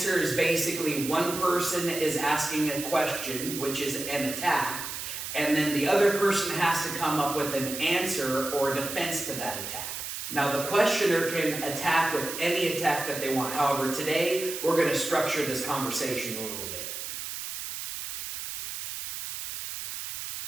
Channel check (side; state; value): right; noise; hiss, 7 dB below the sound